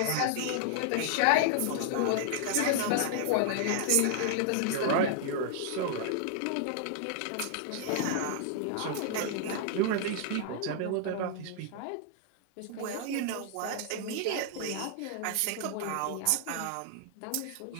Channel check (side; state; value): both; different; correlation -0.01